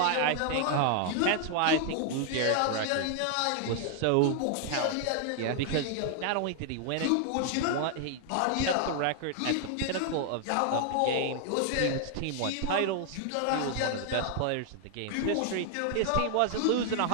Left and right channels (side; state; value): both; different; correlation 0.00